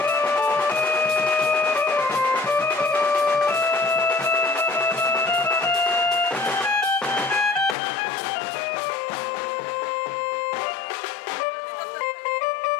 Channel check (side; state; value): right; drops out; at 7.8 s